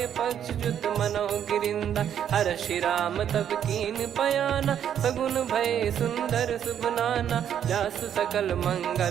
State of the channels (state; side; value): quieter; left; 9.4 dB